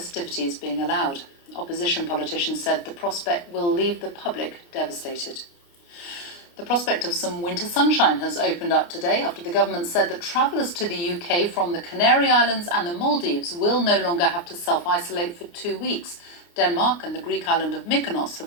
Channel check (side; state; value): right; late; 29 ms